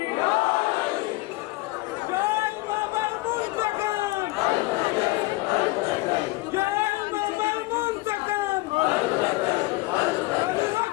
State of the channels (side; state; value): right; quieter; 21.0 dB